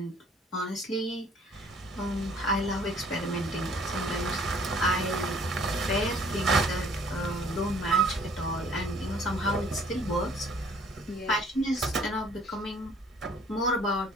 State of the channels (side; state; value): both; normal; correlation 0.57